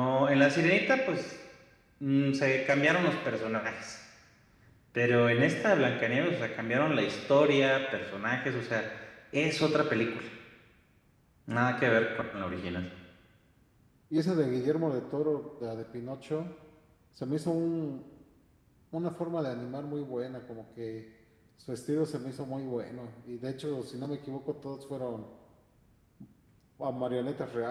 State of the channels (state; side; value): identical; both; correlation 1.00